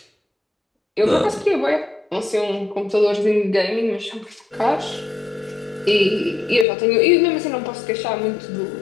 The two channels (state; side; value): drops out; right; at 6.7 s